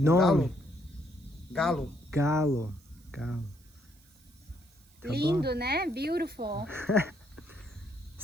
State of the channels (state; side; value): noise; right; hiss, 29 dB below the sound